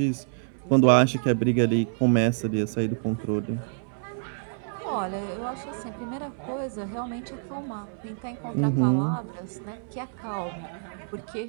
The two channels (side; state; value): left; silent; digital silence